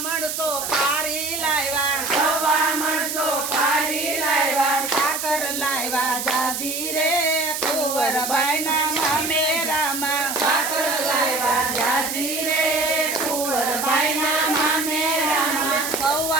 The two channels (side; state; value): right; noise; hiss, 4 dB below the sound